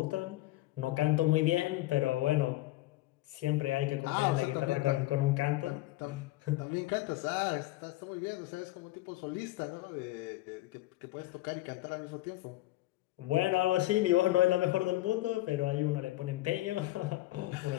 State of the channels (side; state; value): right; quieter; 17.5 dB